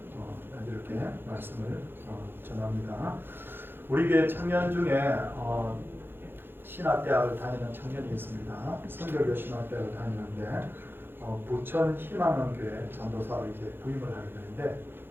이렇게 말씀을 전합니다. 우리 교회 청년 중에 신학대학을 다니는 청년이 있습니다. 성결교 신학대학을 다니는데 부천 희망원교회 전도사로 이제 부임을 하게 되는데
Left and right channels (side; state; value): left; late; 0.10 ms